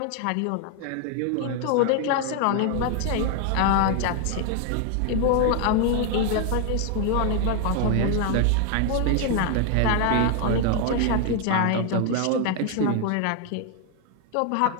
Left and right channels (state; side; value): different; both; correlation 0.01